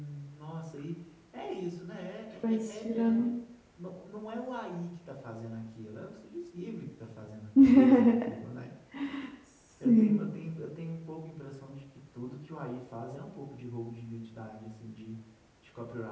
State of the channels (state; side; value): identical; both; correlation 1.00